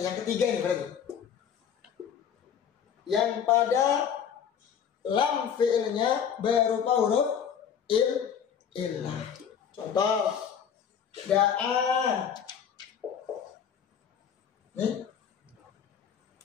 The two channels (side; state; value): right; quieter; 8.0 dB